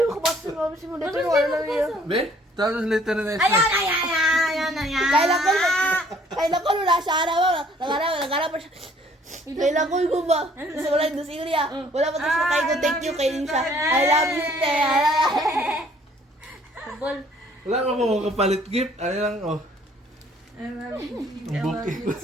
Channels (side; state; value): both; normal; correlation 0.59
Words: makabasa ng mga simulator. Wala lang yun. Be, tapos later na next Ayan. Kailan ko nula siya araw. Nagharap pa siya. Kailan ko ba? Gusto ko lang doon sa Ilya. Wala pa tapos na kayo. Thank you kay siya. I love you, te. Football. Wala ka po kapalit gift. Ano lang, oh. I love you